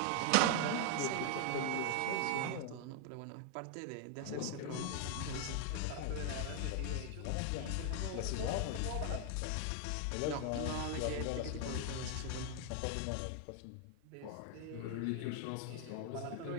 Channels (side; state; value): both; different; correlation 0.00